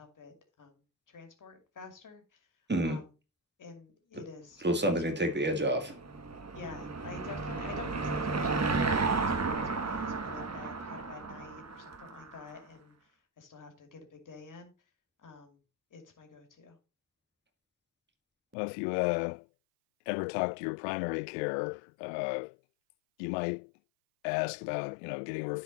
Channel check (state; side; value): drops out; right; at 18.6 s